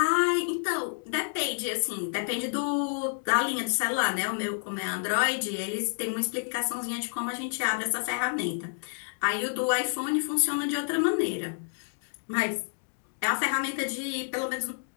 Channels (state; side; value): silent; right; digital silence